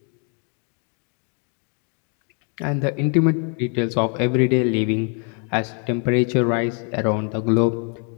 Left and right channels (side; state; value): right; quieter; 39.8 dB